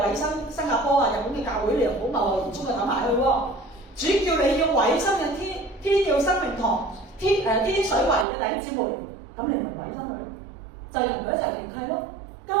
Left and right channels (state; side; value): drops out; left; at 8.2 s